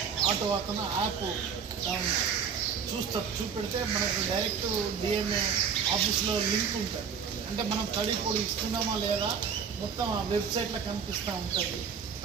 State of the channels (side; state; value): left; quieter; 6.7 dB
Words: ఆటో అతను యాప్ చూపెడితే మనకు డైరెక్ట్ డిఎంఏ ఆఫీస్లో లింక్ ఉంటుంది. అంటే మనం తడి పొడి ఇస్తున్నామా లేదా మొత్తం ఆ వెబ్సైట్లో కనిపిస్తూ ఉంటుంది.